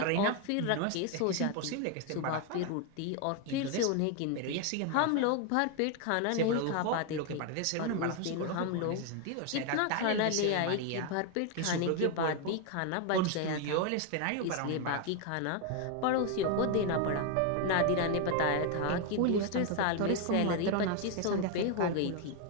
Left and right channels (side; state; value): both; different; correlation 0.01